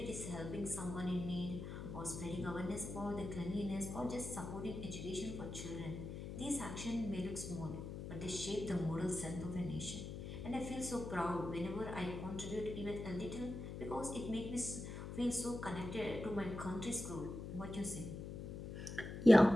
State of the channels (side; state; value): left; noise; hum, 7 dB below the sound